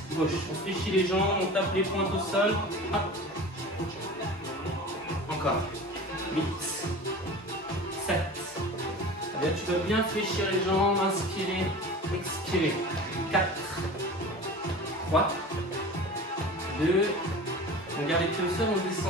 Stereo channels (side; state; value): both; normal; correlation 0.36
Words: gauche. On fléchit les jambes, on tape les pointes au sol. Hop. Encore. 8, 7. Allez, tu dois bien fléchir les jambes, inspirer, expirer. 4, 3, 2. On garde les pieds au sol, on